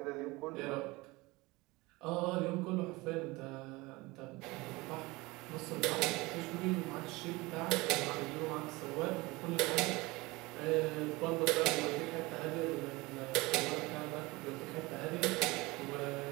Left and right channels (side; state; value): left; quieter; 22.5 dB